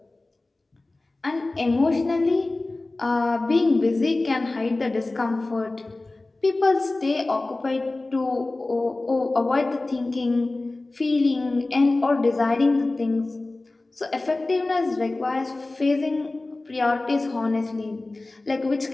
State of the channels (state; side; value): quieter; right; 3.0 dB